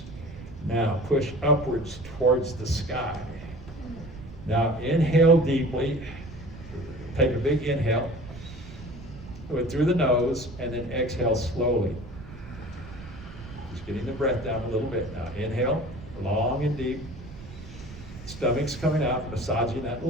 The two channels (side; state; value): right; noise; rumble, 15 dB below the sound